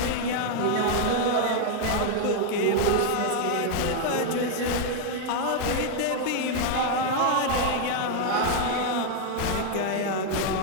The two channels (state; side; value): different; both; correlation 0.00